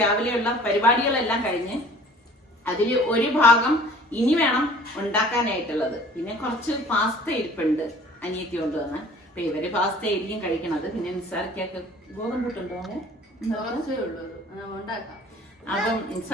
രാവിലെയുള്ള പരിപാടികളെല്ലാം കഴിഞ്ഞ് അതില് ഒരു ഭാഗം ഇനി വേണം ഉണ്ടാക്കാനായിട്ടുള്ളത്. പിന്നെ കുറച്ച് പാസ്ത ഇരിപ്പുണ്ട് അനിയത്തി കൊണ്ടുവന്ന്. അപ്പൊ ഇവര് പാസ്ത ആയിരിക്കും കഴിക്കണത്. പിന്നെ നിസാർക്കൊക്കെ ഗോതമ്പൂട്ടുണ്ടോ? അപ്പം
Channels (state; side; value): normal; both; correlation 0.49